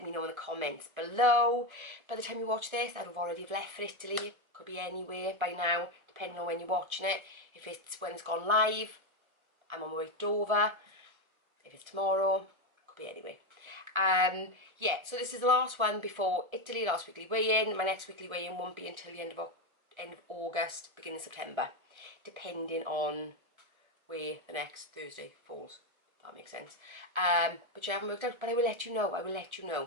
me know in the comments below. By the time you watch this, I'd have already left for Italy. Could be anywhere by now, depending on when you're watching it. If it's when it's gone live, I'm on my way to Dover. If it's tomorrow, could be anywhere. Yeah, so this is the last one before Italy, last weekly weigh-in. My next weekly weigh-in won't be until the end of August, beginning of September, depending on where the next Thursday falls. That makes sense. But you haven't worked out, but I will let you know. I will let you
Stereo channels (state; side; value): late; left; 1.3 ms